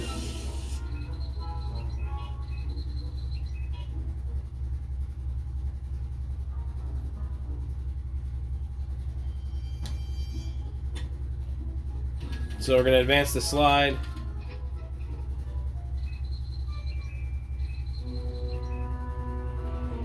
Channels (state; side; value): identical; both; correlation 1.00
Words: So we're going to advance the slide.